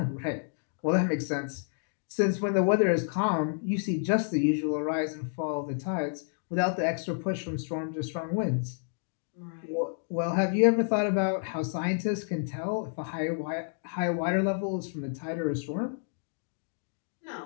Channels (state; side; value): silent; right; digital silence